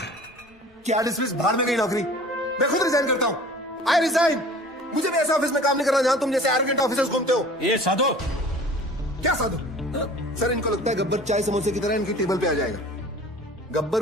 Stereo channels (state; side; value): normal; both; correlation 0.45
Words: क्या डिसमिस? बाहर में गई नौकरी। मैं खुद रिजाइन करता हूं। I resign. मुझे भी ऐसे ऑफिस में काम नहीं करना जहां तुम जैसे एरोगेंट ऑफिसर्स घूमते हो। ये साधु। क्या साधु? सर, इनको लगता है गब्बर चाय समोसे की तरह इनकी टेबल पे आ जाएगा।